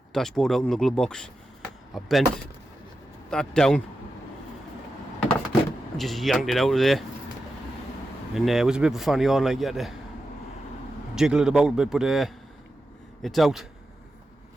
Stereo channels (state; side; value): normal; both; correlation 0.90